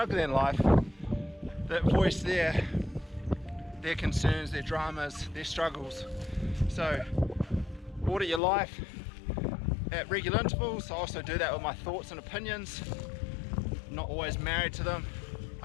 in life that voice their concerns, their dramas, their struggles. So audit your life at regular intervals. I also do that with my thoughts and opinions. I'm not always married to them.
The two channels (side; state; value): right; drops out; at 8.4 s